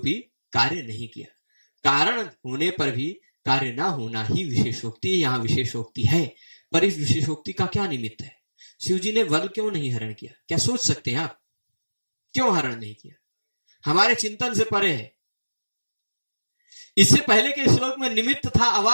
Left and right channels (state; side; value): inverted; both; correlation -1.00